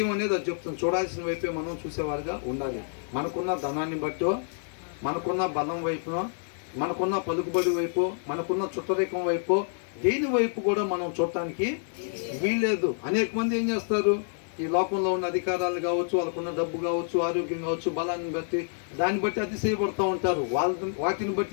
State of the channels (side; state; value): right; silent; 59 dB below the other